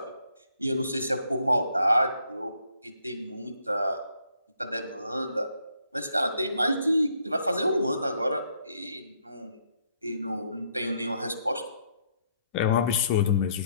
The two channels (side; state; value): both; inverted; correlation -0.70